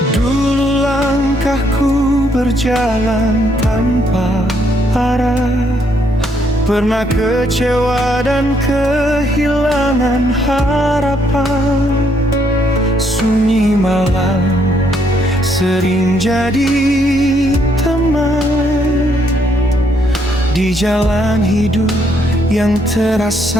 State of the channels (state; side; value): normal; both; correlation 0.71